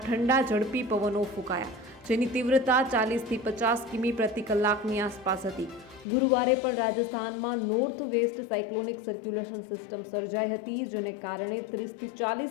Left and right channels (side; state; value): right; drops out; at 6.1 s